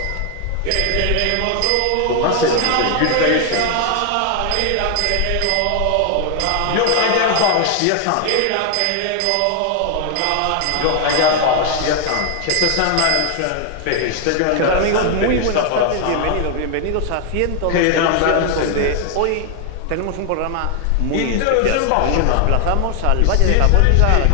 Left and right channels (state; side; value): different; both; correlation 0.00